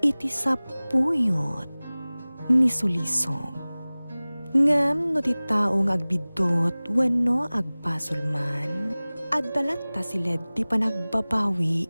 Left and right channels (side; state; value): both; inverted; correlation -0.99